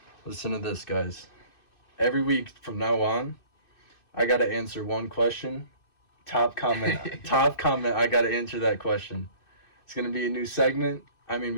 listen to this, guys. Every week from now on, I gotta answer one question. Top comment, I gotta answer that question. It's gonna be a new segment. I mean,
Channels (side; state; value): right; late; 2.6 ms